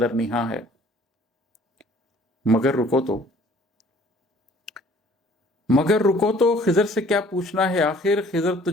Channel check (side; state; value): both; normal; correlation 0.55